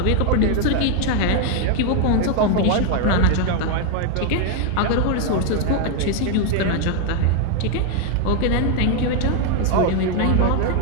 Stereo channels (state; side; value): different; both; correlation 0.01